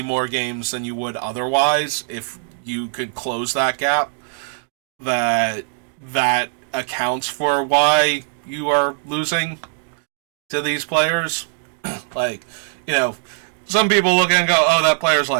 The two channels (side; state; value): left; silent; digital silence